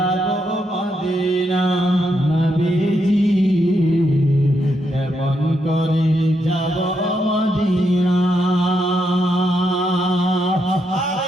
মদিনা নবীজি, কেমন করে যাব মদিনা। আর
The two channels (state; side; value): normal; both; correlation 0.80